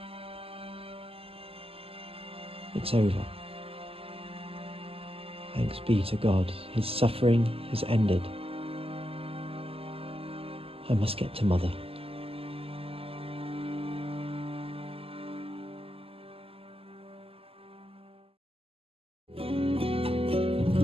It's over. Thanks be to God. His suffering has ended. I must get to Mother.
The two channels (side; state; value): left; late; 0.28 ms